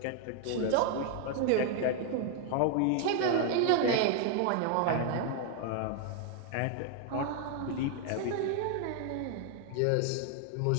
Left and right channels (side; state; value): both; different; correlation 0.00